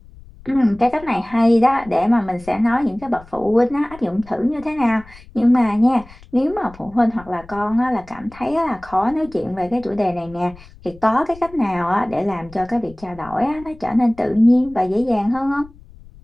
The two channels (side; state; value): left; noise; rumble, 22 dB below the sound